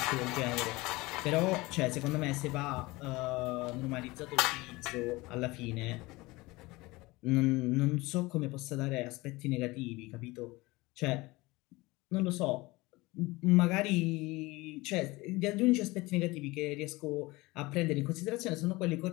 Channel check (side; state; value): right; quieter; 21.8 dB